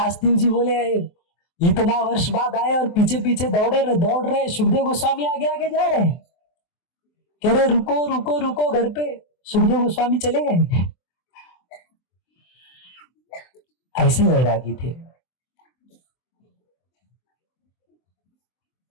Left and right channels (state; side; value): late; right; 23 ms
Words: जी बोले इतना वर्ष बाद आए और पीछे पीछे दौड़ रहे। सुखदेव गोस्वामी आगे आगे जा रहे, कह रहे रुको रुको रुको घर पे। सुखदेव गोस्वामी चले गए। ऐसे वैरागी थे,